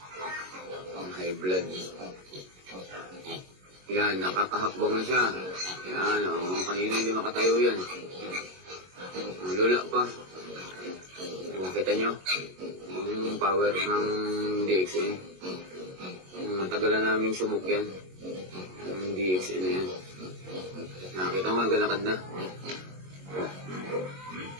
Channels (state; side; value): late; left; 22 ms